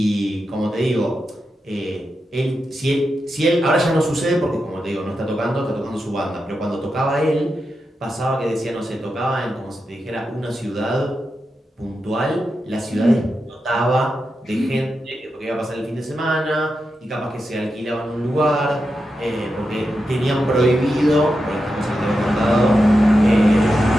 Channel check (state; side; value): normal; both; correlation 0.88